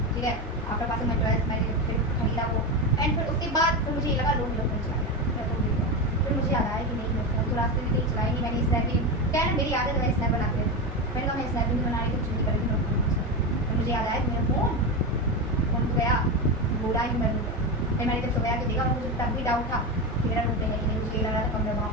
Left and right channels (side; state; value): both; normal; correlation 0.17